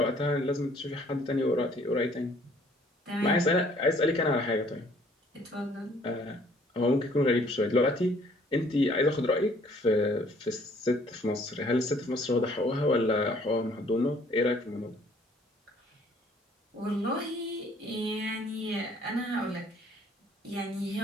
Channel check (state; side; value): normal; both; correlation 0.60